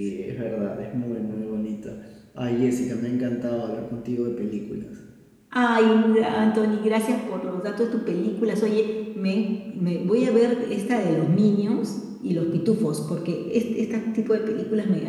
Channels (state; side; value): identical; both; correlation 1.00